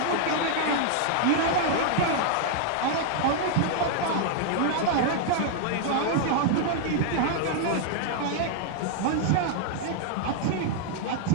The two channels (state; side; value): different; both; correlation 0.00